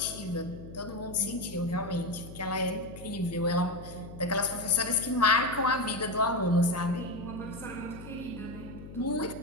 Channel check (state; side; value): noise; left; hum, 13 dB below the sound